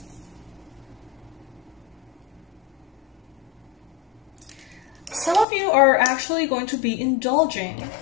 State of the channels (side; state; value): right; drops out; at 5.5 s